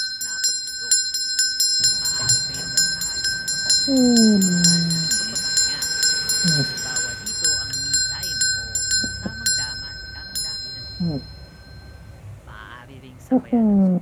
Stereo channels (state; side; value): identical; both; correlation 1.00